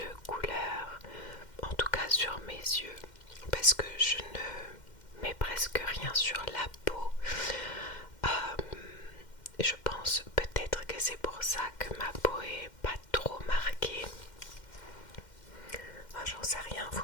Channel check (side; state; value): right; late; 2.1 ms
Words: couleur, en tout cas sur mes yeux, parce que je ne mets presque rien sur la peau. Je pense peut-être que c'est pour ça que ma peau est pas trop marquée. J'en sais rien, vous